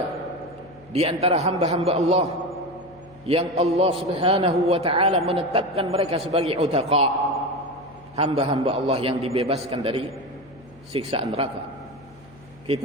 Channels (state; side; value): noise; left; hum, 24 dB below the sound